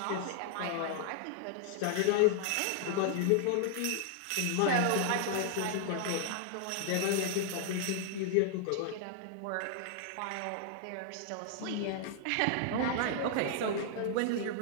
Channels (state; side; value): different; both; correlation -0.01